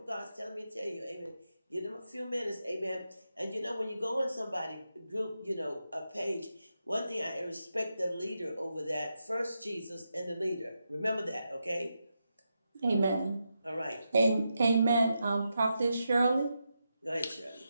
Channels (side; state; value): both; inverted; correlation -0.86